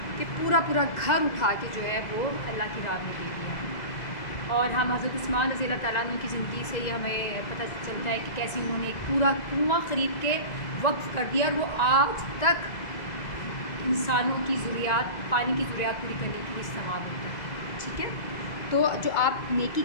کہ پورا گھر اٹھا کے جو ہے وہ اللہ کی راہ میں دے دیا۔ اور ہم حضرت عثمان رضی اللہ تعالیٰ عنہ کی زندگی سے یہ ہمیں پتہ چلتا ہے کہ کیسے انہوں نے ایک پورا کنواں خرید کے وقف کر دیا، اور وہ آج تک انسانوں کی ضروریات، پانی کی ضروریات پوری کرنے کے لیے استعمال ہوتا ہے، ٹھیک ہے۔ تو جو آپ نیکی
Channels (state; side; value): late; right; 2.0 ms